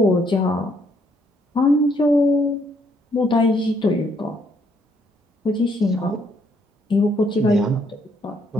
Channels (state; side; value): normal; both; correlation 0.70